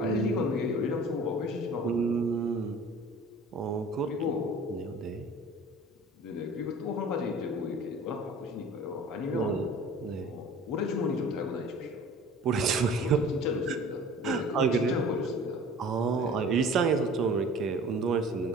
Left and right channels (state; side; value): normal; both; correlation 0.44